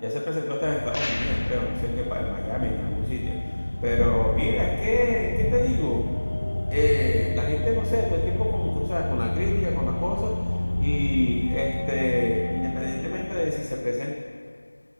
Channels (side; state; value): both; inverted; correlation -1.00